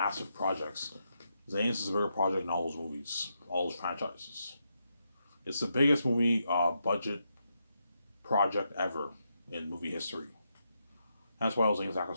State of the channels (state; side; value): inverted; both; correlation -0.82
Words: projects. Zanes is a bigger project than all those movies, all those franchises. It's the biggest movie budget project ever in movie history. That's why all Zanes